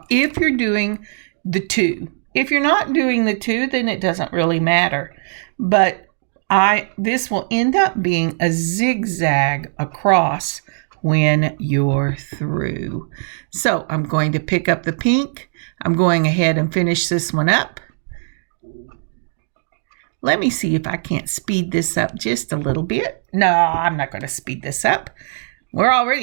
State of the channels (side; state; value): left; silent; digital silence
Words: if you're doing the 2, if you're not doing the 2, then it doesn't really matter. But this will end up being a zigzag across when you're through. So I'm going to pick up the pink. I'm going ahead and finish this one up. Let me see if I can't speed this up just a little bit. No, I'm not going to speed this up. We're